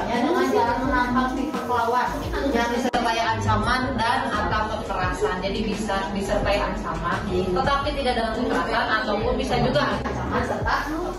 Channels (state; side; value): identical; both; correlation 1.00